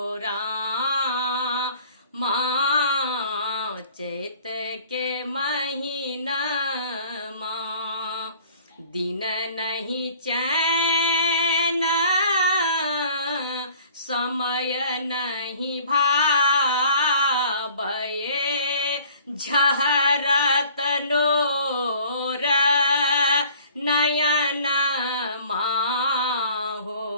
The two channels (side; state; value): both; inverted; correlation -0.50